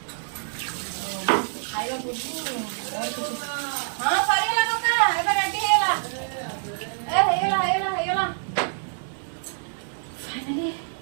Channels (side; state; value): left; silent; 61 dB below the other